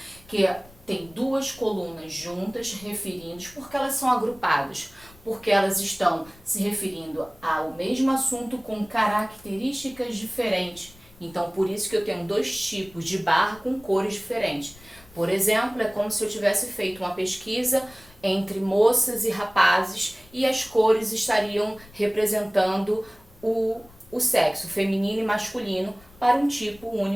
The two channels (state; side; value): noise; left; rumble, 24 dB below the sound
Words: que tem duas colunas juntas referindo, porque elas são agrupadas, porque elas estão se referindo ao mesmo assunto com características diferentes. Então, por isso que eu tenho dois tipos de barra com cores diferentes. Por exemplo, é como se eu tivesse feito uma pesquisa entre moças e rapazes e as cores estariam representando o sexo feminino e masculino para um tipo